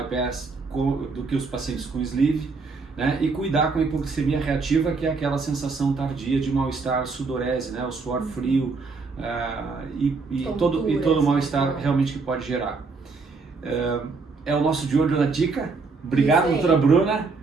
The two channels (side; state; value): left; quieter; 4.3 dB